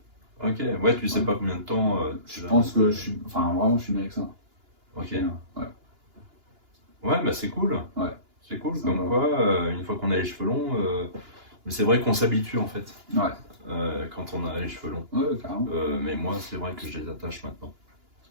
Ok, ouais, tu sais Ouais. pas combien de temps. Je pense que je suis. Enfin, vraiment, je suis bien avec ça. Ok. Ouais. Ouais, bah c'est cool. Ouais. C'est cool, Ça comme va. quoi, une fois qu'on a les cheveux longs, mais c'est vrai qu'on s'habitue en fait, Ouais. quand on a les cheveux longs. Ouais, carrément. Mais moi, c'est vrai que je les attache maintenant.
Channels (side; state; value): left; late; 2.9 ms